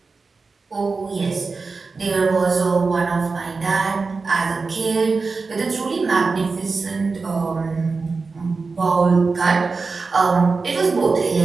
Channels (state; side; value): quieter; left; 4.3 dB